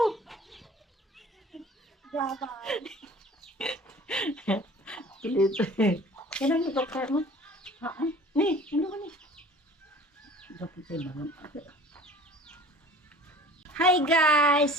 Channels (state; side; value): normal; both; correlation 0.46